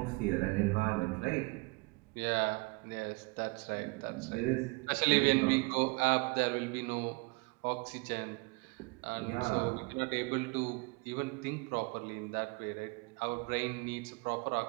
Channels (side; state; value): left; quieter; 28.0 dB